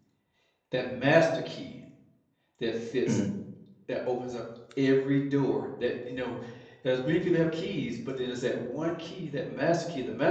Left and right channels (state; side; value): identical; both; correlation 1.00